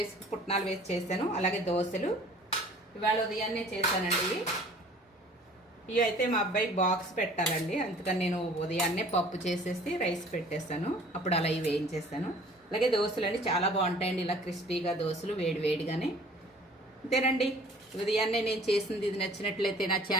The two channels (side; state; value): both; normal; correlation 0.51